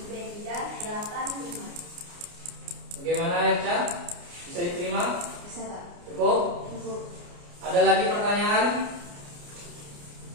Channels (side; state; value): left; late; 29 ms